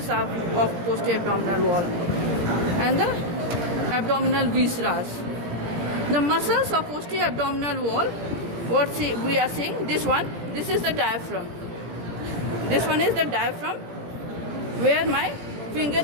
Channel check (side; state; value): left; late; 17 ms